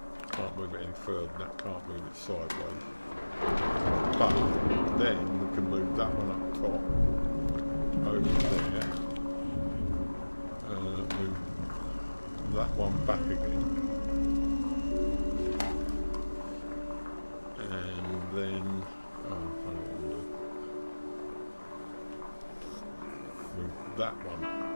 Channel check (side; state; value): both; inverted; correlation -1.00